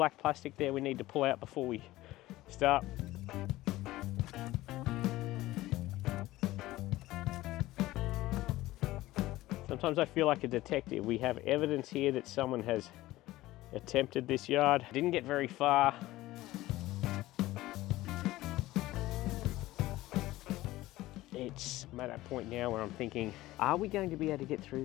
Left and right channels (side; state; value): right; quieter; 17.1 dB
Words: plastic there we need to pull out before we start. Sometimes I feel like a detective. We have evidence here that someone has attempted this yard. Didn't get very far. I'm at that point now where I'm thinking, are we going to be able to get through